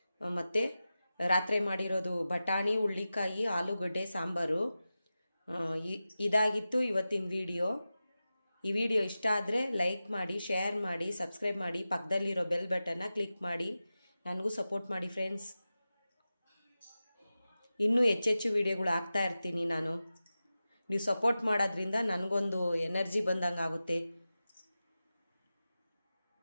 ಮತ್ತು ರಾತ್ರಿ ಮಾಡಿರೋದು ಬಟಾಣಿ, ಹುಳ್ಳಿಕಾಯಿ, ಆಲೂಗಡ್ಡೆ ಸಾಂಬಾರು. ಇದಾಗಿತ್ತು ಇವತ್ತಿನ ವಿಡಿಯೋ. ಈ ವಿಡಿಯೋ ಇಷ್ಟ ಆದರೆ ಲೈಕ್ ಮಾಡಿ, ಶೇರ್ ಮಾಡಿ, ಸಬ್ಸ್ಕ್ರೈಬ್ ಮಾಡಿ, ಪಕ್ಕದಲ್ಲಿರೋ ಬೆಲ್ ಬಟನ್ನ ಕ್ಲಿಕ್ ಮಾಡಿ. ನನಗೂ ಸಪೋರ್ಟ್ ಮಾಡಿ ಫ್ರೆಂಡ್ಸ್. ಇನ್ನೂ ಹೆಚ್ಚೆಚ್ಚು ವಿಡಿಯೋಗಳು ಹಾಕ್ತಾ ಇರ್ತೀನಿ ನಾನು. ನೀವು ಸಪೋರ್ಟ್ ಮಾಡೋದ್ರಿಂದ ನನಗೊಂದು ಎನರ್ಜಿ ಬಂದಂಗೆ ಆಗುತ್ತೆ.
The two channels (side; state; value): both; inverted; correlation -0.94